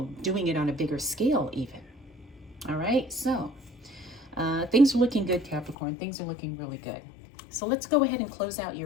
doing it on a bigger scale even. All right, so things are looking good, Capricorn. Things are looking really good. So let's go ahead and close out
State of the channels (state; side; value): drops out; right; at 5.8 s